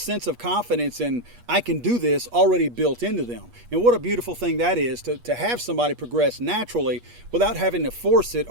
of confidence and I can do this already built into them. And what a beautiful thing that is to have somebody progress naturally without having to force it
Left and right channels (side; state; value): left; late; 8.3 ms